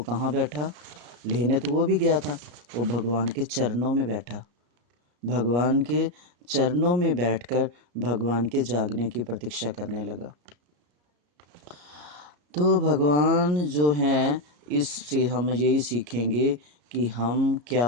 कहाँ बैठा? लेने तो वो भी गया था, वो भगवान के चरणों में बैठा। भगवान के चरणों में बैठकर भगवान के जागने की प्रतीक्षा करने लगा। तो भगवान जो हैं, इससे हम यही सीखेंगे कि हम क्या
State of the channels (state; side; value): late; left; 34 ms